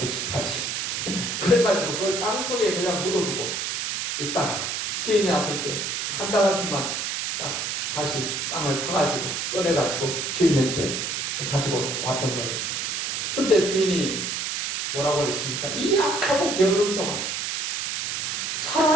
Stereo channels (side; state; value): right; noise; hiss, 2 dB below the sound